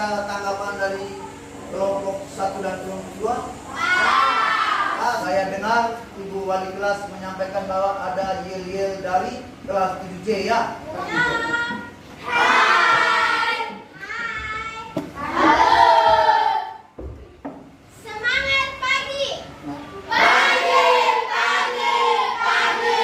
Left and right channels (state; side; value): identical; both; correlation 1.00